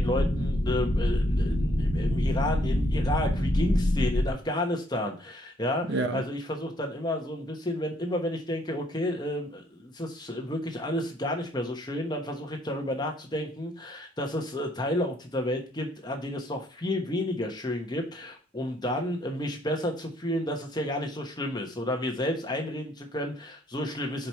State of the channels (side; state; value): both; normal; correlation 0.68